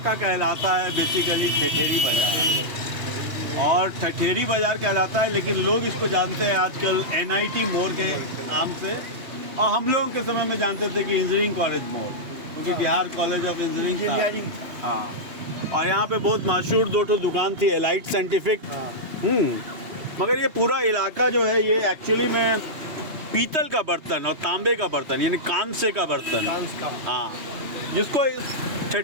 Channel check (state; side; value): late; left; 3.2 ms